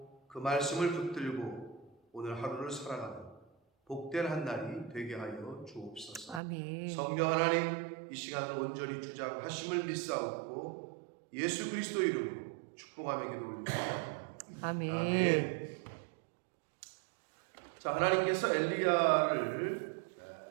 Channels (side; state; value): left; drops out; at 6.4 s